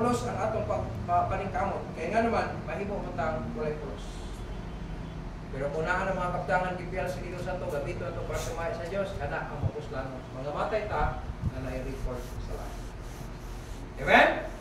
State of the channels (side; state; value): both; identical; correlation 1.00